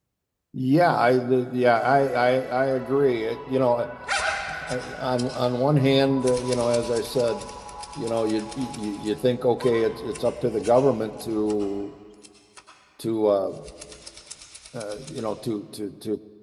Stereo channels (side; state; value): both; identical; correlation 1.00